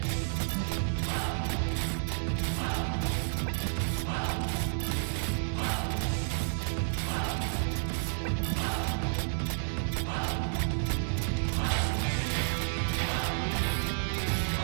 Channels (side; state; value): left; silent; 57 dB below the other